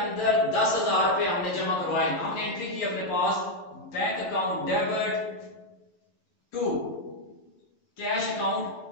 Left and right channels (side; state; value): right; late; 12 ms